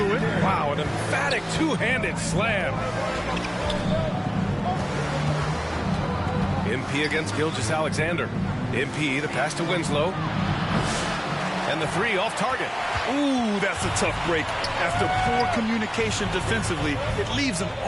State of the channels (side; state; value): both; identical; correlation 1.00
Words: it. Wow, an emphatic two-handed slam. MP against Gilgeous-Alexander. MP, the pass to Winslow. And the three off target. Ooh, that's a tough break. After poor communication defensively, it leaves him